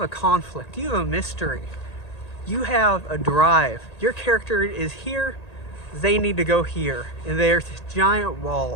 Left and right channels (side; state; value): right; late; 1.8 ms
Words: a conflict, you have a mystery, you have a drive. Your character is here, they need to go here, and there's this giant